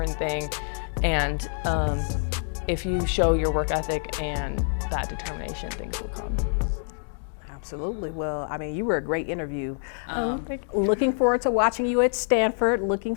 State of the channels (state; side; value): silent; right; digital silence